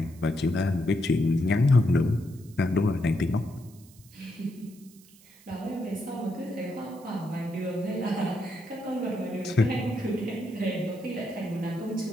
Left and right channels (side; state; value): right; noise; hiss, 25 dB below the sound